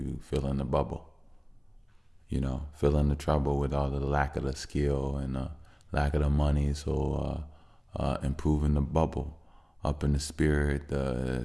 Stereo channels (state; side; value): identical; both; correlation 1.00